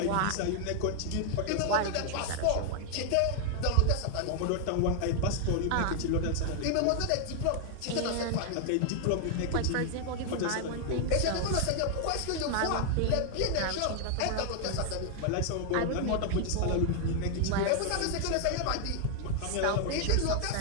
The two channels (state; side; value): different; both; correlation 0.00